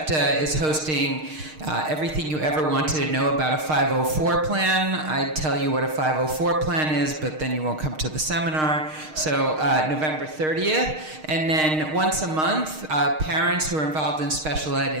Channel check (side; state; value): left; late; 6.5 ms